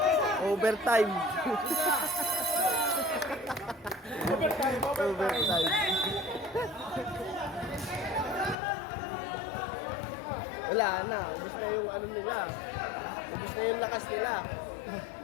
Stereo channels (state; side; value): drops out; right; at 8.6 s